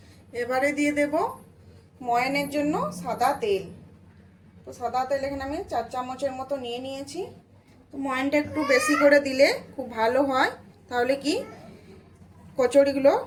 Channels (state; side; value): identical; both; correlation 1.00